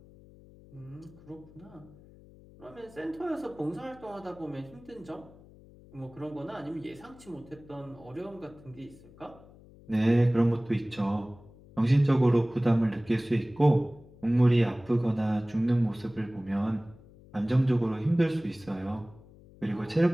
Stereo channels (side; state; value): left; noise; hum, 23 dB below the sound